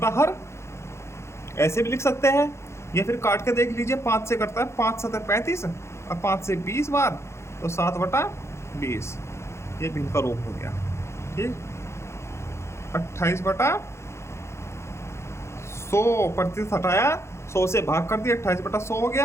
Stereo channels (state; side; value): late; right; 0.13 ms